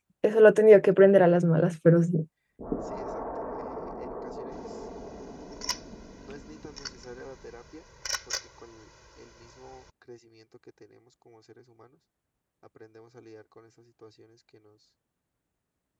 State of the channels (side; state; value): both; identical; correlation 1.00